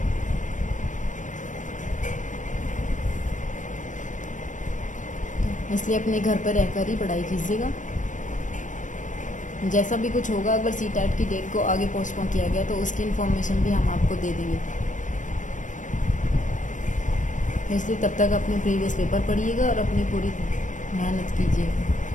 इसलिए अपने घर पर रहकर ही पढ़ाई कीजिएगा। जैसा भी कुछ होगा, अगर सीटेट की डेट को आगे पोस्टपोन किया गया तो उसकी इन्फॉर्मेशन भी हम आपको दे देंगे। इसलिए तब तक अपने प्रीवियस पेपर पढ़िएगा और अपनी पूरी मेहनत कीजिए।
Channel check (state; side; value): late; right; 0.37 ms